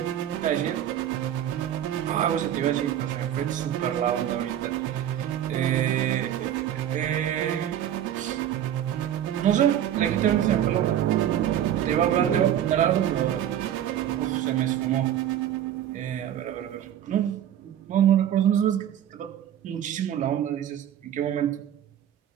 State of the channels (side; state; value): left; quieter; 10.8 dB